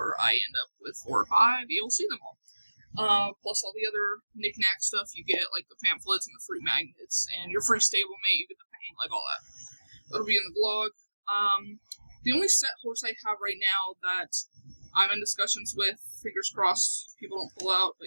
I end up with 4 or 5, you'll see them all. Plus all the other knick-knack stuff you get, like the pamphlets and the free magnets, and your free stablemate, you get the paint, like all that. That'll be in the vlog. The only set horse I have right now that I'm in discussions with, fingers crossed, people don't pull out, but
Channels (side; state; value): both; inverted; correlation -1.00